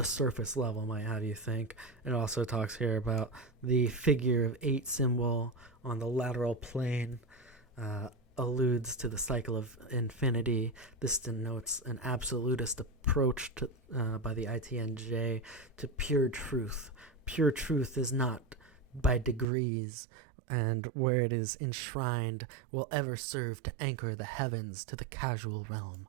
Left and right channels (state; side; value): drops out; left; at 19.5 s